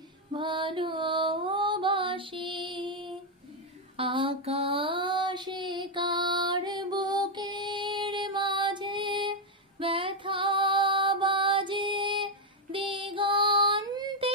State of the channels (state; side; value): normal; both; correlation 0.02